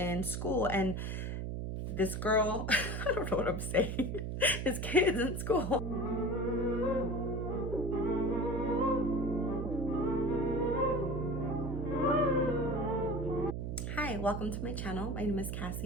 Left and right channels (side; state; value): right; noise; hum, 3 dB below the sound